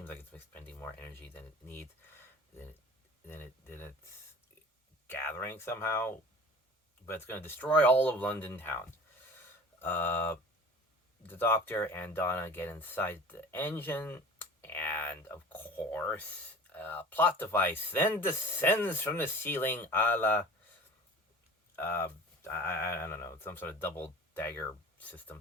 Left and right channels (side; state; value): both; normal; correlation 0.40